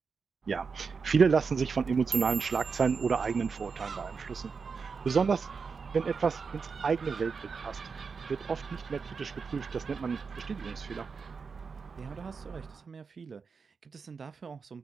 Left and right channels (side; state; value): left; quieter; 5.3 dB